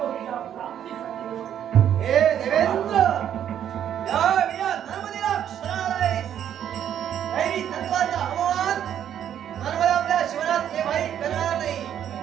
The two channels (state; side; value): quieter; left; 9.9 dB